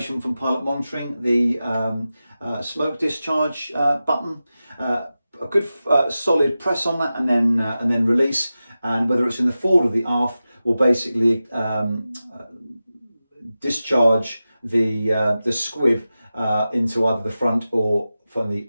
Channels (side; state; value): both; inverted; correlation -0.94